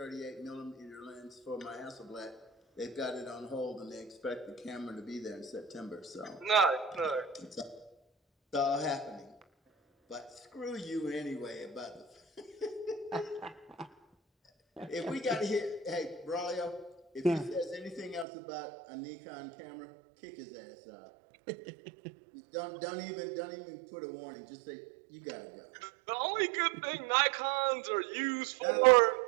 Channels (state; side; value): drops out; left; at 18.2 s